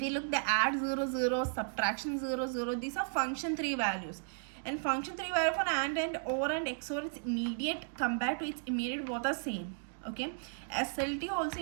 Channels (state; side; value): silent; left; digital silence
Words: you look the add 0 0, subtraction 0 0, these are function 3 values. And function 3 value for AND and OR and XOR is immediate compared to its immediate, both are same. Okay, SLT also